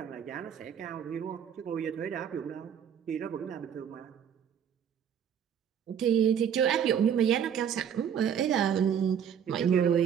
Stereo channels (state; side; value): quieter; left; 8.4 dB